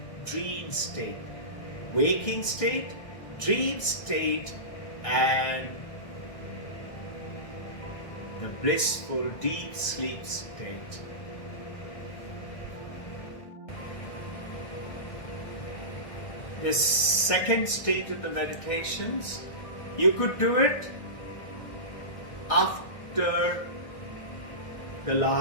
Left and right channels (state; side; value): late; right; 1.6 ms